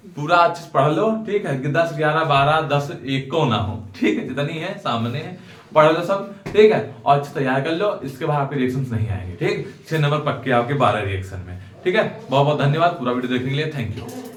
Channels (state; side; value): identical; both; correlation 1.00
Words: पूरा अच्छे से पढ़ लो, ठीक है, कि 10, 11, 12, 10 एक को ना हो, ठीक है, जितनी है सामने है पढ़ लो सब, ठीक है, और अच्छे तैयार कर लो। इसके बाद आपके रिएक्शंस नहीं आएंगे, ठीक, 6 नंबर पक्के आपके 12 रिएक्शन में, ठीक है। बहुत बहुत धन्यवाद पूरा वीडियो देखने के लिए, थैंक यू।